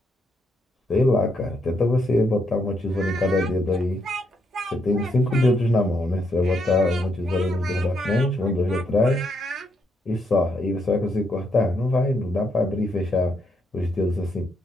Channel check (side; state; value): both; normal; correlation 0.76